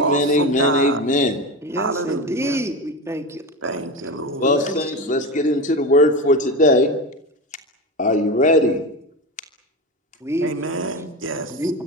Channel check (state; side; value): normal; both; correlation 0.22